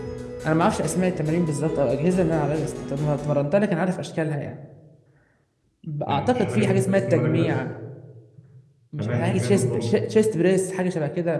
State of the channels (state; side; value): identical; both; correlation 1.00